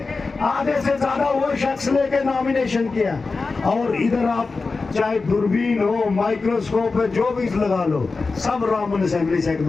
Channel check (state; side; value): quieter; right; 4.1 dB